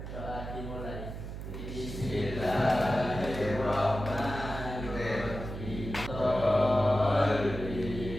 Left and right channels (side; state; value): right; noise; hum, 8 dB below the sound